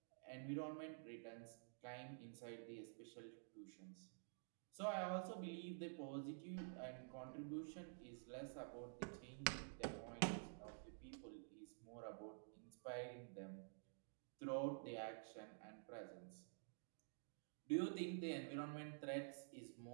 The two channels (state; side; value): silent; left; digital silence